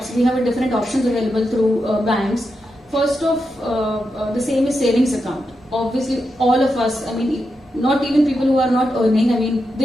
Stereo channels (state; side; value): normal; both; correlation 0.87